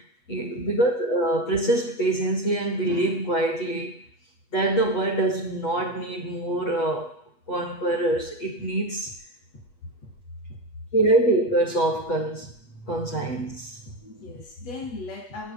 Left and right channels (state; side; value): late; right; 8.2 ms